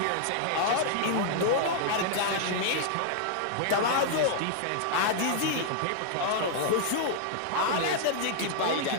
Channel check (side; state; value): both; different; correlation -0.01